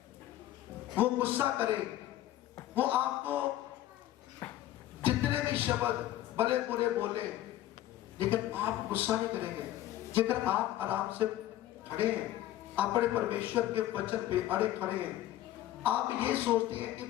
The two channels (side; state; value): right; quieter; 13.9 dB